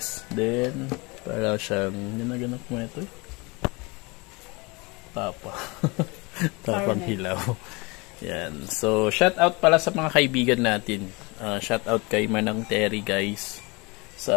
Then, para siyang, ginaganap mo ito Tapang hilaw. Yan. So, shout out pala sa mga kaibigan natin. Shout out kay Manang Terry guys. Sa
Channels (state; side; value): quieter; right; 26.7 dB